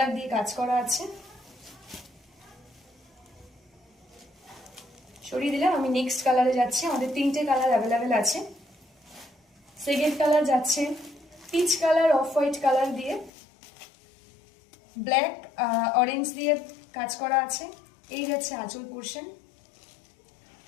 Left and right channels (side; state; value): right; drops out; at 13.3 s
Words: দিয়ে কাজ করা আছে। সরিয়ে দিলাম, আমি নেক্সট কালারে যাচ্ছি। আমাদের তিনটে কালার অ্যাভেলেবেল আছে। সেকেন্ড কালার যাচ্ছে peach colour, off white colour দিয়ে ব্ল্যাক অরেঞ্জ দিয়ে কাজ করা আছে। এই যাচ্ছে আঁচল পোর্শন।